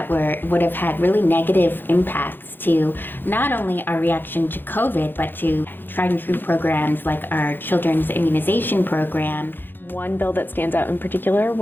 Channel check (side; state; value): right; late; 0.096 ms